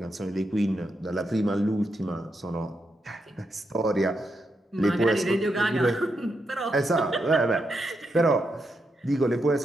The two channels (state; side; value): normal; both; correlation 0.83